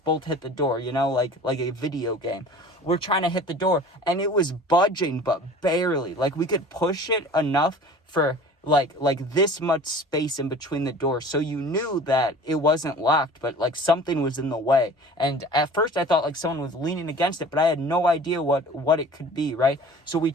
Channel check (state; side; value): normal; both; correlation 0.43